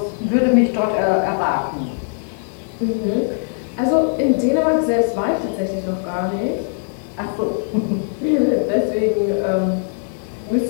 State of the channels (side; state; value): right; silent; 61 dB below the other